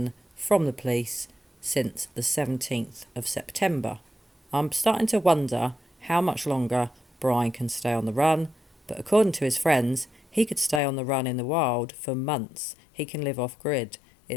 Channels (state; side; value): drops out; right; at 10.8 s